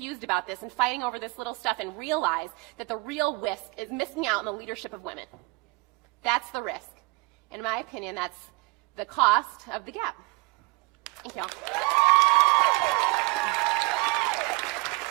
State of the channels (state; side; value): quieter; left; 24.9 dB